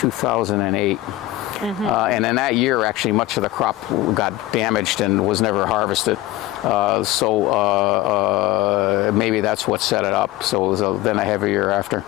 And in that year, actually, much of the crop got damaged and was never harvested. Maybe that's what set it up. So it was then a heavy year after.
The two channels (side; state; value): right; quieter; 16.4 dB